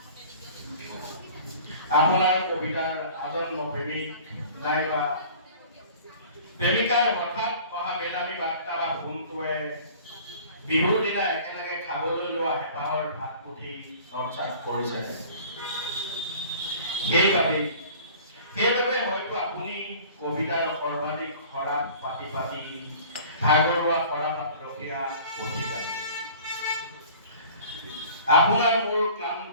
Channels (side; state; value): both; inverted; correlation -0.46